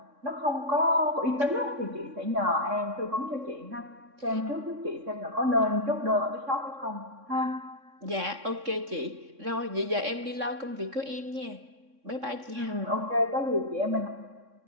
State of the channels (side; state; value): left; late; 3.6 ms